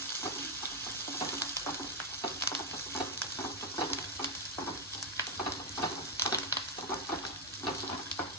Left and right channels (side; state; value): both; normal; correlation 0.02